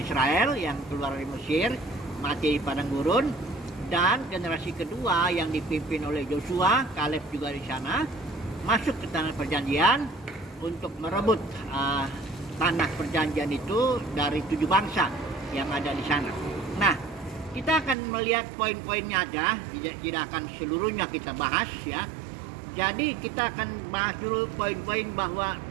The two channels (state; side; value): drops out; left; at 17.9 s